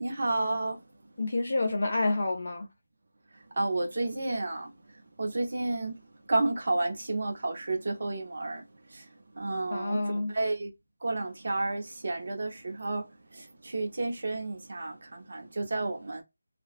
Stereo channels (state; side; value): inverted; both; correlation -0.95